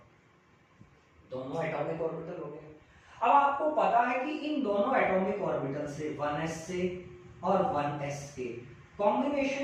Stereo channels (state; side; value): identical; both; correlation 1.00